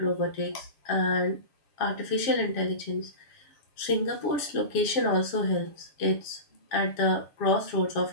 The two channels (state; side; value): late; right; 7.4 ms